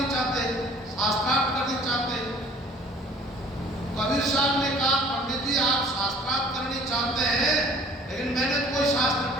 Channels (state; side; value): normal; both; correlation 0.51